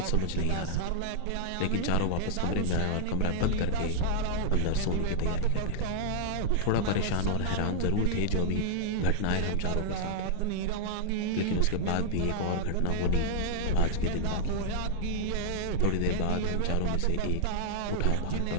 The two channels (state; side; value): different; both; correlation -0.01